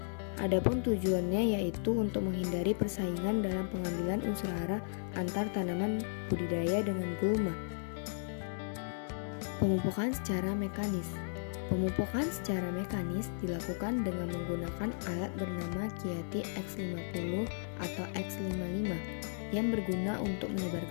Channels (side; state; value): right; silent; 54 dB below the other